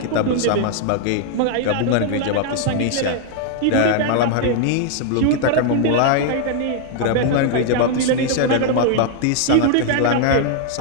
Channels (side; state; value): both; different; correlation 0.00